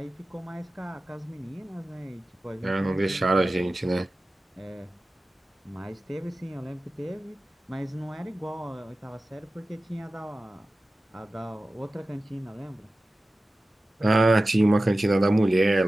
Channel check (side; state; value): both; normal; correlation 0.95